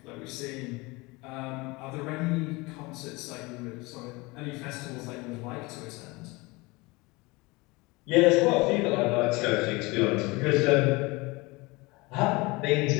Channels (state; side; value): quieter; right; 24.2 dB